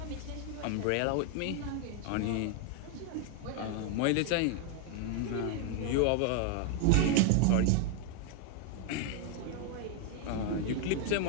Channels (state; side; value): different; both; correlation 0.01